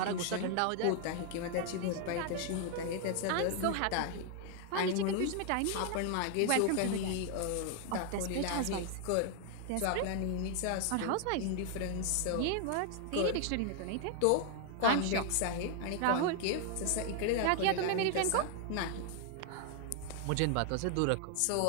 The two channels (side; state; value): both; different; correlation 0.00